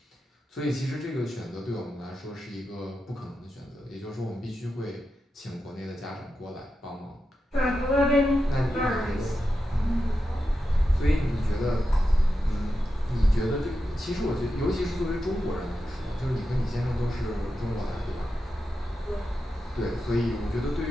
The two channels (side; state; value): both; normal; correlation 0.89